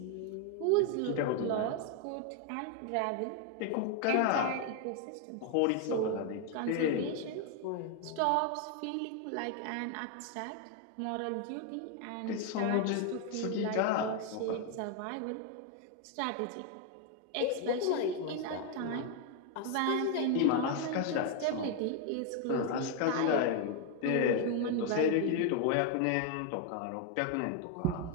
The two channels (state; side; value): different; both; correlation 0.01